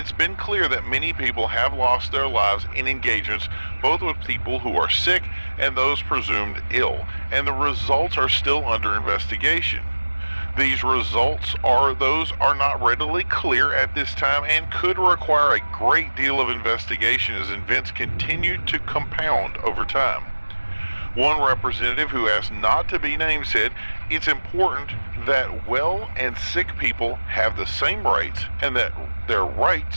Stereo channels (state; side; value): inverted; both; correlation -1.00